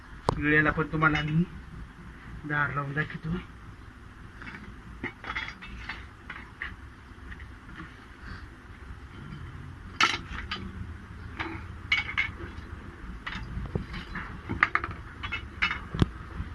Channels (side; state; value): both; identical; correlation 1.00